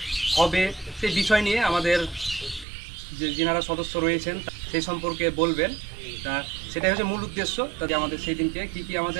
হবে সেই বিষয় নিয়ে আমাদের যে যিনারা সদস্য রয়েছেন সেই সম্পর্কে বলবেন। তা সেটাই হচ্ছে মূল উদ্দেশ্য। তাতে আমাদের সেই দিনকে কী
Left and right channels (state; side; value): drops out; left; at 2.7 s